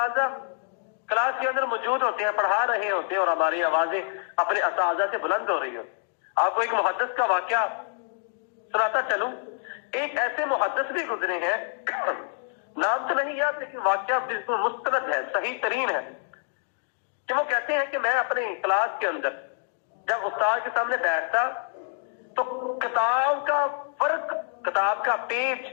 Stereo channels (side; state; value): right; silent; digital silence